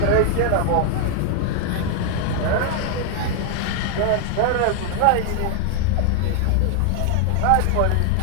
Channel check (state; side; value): different; both; correlation 0.00